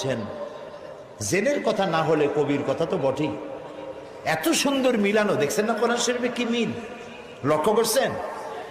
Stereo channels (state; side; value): identical; both; correlation 1.00